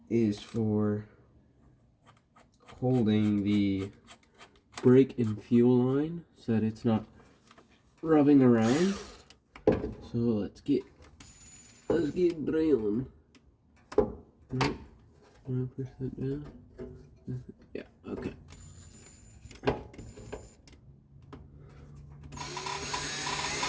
is for holding the brake and fuel line so that it's not rubbing around. So let's get drilling. Right. Want to push that down? Yeah, okay.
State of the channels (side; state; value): both; identical; correlation 1.00